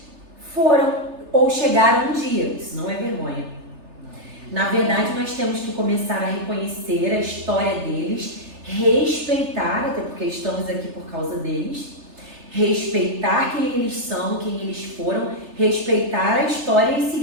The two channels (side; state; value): left; late; 3.3 ms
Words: foram ou chegaram um dia. Isso não é vergonha. Na verdade, nós temos que começar a reconhecer a história deles, respeitar, até porque estamos aqui por causa deles, respeitar quem eles são, quem eles foram, respeitar a história e